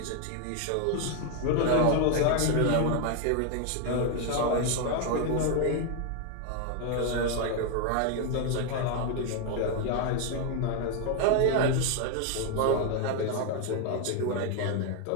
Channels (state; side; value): different; both; correlation 0.01